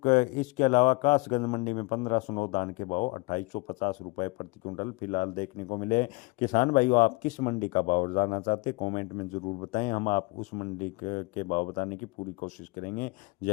इसके अलावा कासगंज मंडी में 1509 धान के भाव 2850 रुपये प्रति क्विंटल फिलहाल देखने को मिले। किसान भाइयों आप किस मंडी का भाव जानना चाहते हैं कमेंट में ज़रूर बताएं, हम आप उस मंडी के भाव बताने की पूरी कोशिश करेंगे।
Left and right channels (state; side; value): quieter; right; 25.5 dB